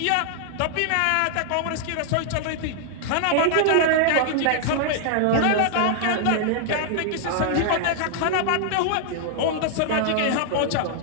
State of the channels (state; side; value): different; both; correlation 0.00